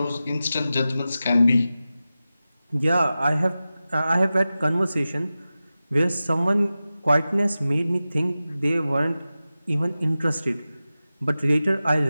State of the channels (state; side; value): inverted; both; correlation -0.95